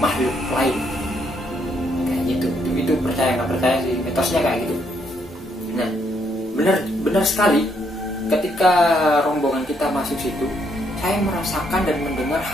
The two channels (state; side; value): normal; both; correlation 0.73